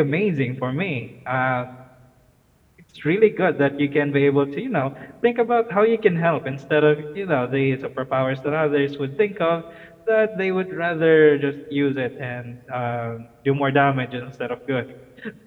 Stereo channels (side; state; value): both; identical; correlation 1.00